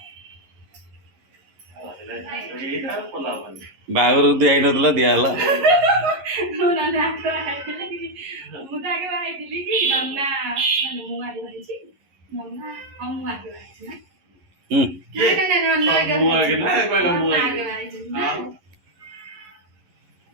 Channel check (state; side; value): late; left; 11 ms